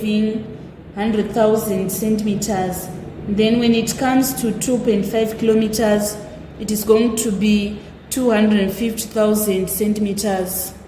100,000 centimeters. Then when it comes to 2.5 kilometers, it is going to be 250,000 centimeters.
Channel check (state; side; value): identical; both; correlation 1.00